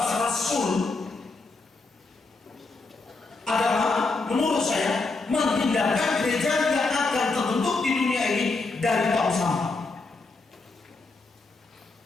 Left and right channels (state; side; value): quieter; right; 3.7 dB